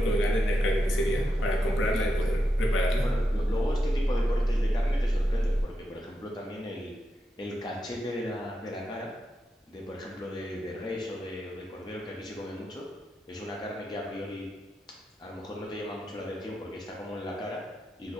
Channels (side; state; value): both; normal; correlation 0.86